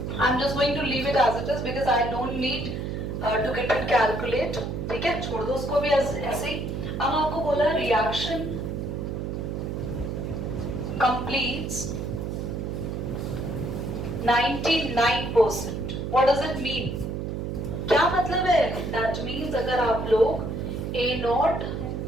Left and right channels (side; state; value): right; noise; hum, 4 dB below the sound